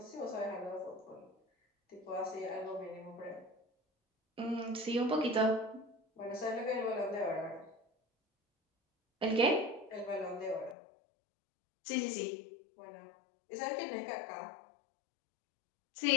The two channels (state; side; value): drops out; right; at 10.8 s